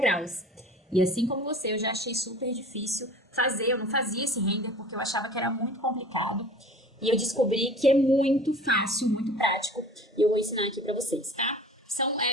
E assim como você, eu já achei super difícil fazer, eu não fazia esse render porque eu achava que era muito complicado. E eu descobri que é muito fácil, muito prático. E eu vou ensinar aqui pra vocês, tá? São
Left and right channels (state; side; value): normal; both; correlation 0.44